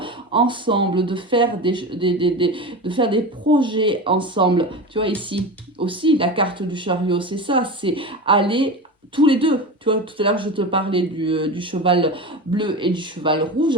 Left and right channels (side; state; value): both; normal; correlation 0.26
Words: ensemble, de faire de faire des projets ensemble. Tu vois ici aussi la carte du chariot, c'est ça, c'est aller tous les deux. Tu vois, tout à l'heure je te parlais du cheval bleu et du cheval